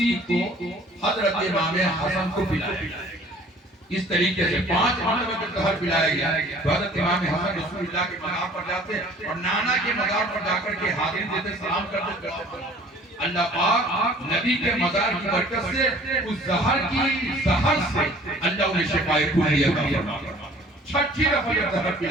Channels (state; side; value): normal; both; correlation 0.51